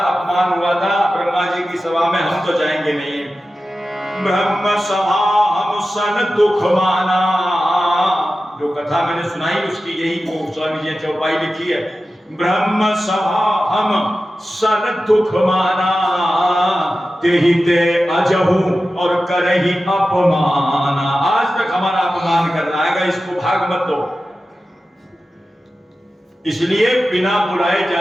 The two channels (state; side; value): normal; both; correlation 0.94